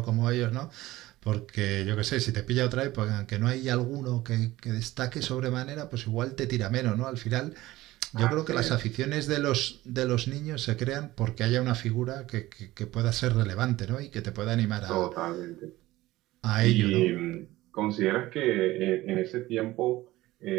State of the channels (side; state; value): left; quieter; 17.4 dB